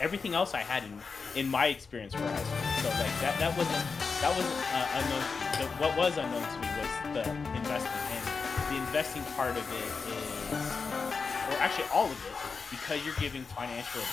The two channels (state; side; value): quieter; right; 5.0 dB